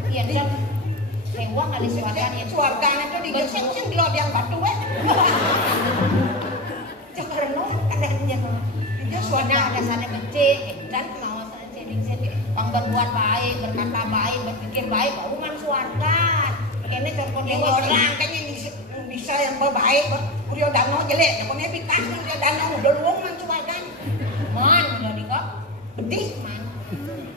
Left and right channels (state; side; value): normal; both; correlation 0.21